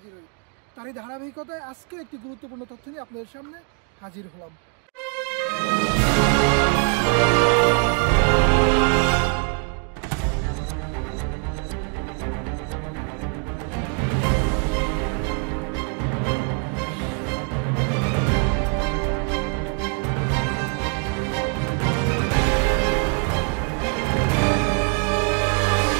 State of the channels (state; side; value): quieter; left; 39.8 dB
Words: হই। তারই ধারাবাহিকতায় আজকে একটি গুরুত্বপূর্ণ তথ্য নিয়ে আপনাদের সামনে হাজির হলাম।